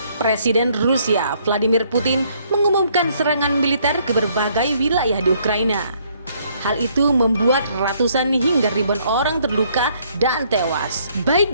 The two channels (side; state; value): both; inverted; correlation -0.67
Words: Presiden Rusia Vladimir Putin mengumumkan serangan militer ke berbagai wilayah di Ukraina. Hal itu membuat ratusan hingga ribuan orang terluka dan tewas, baik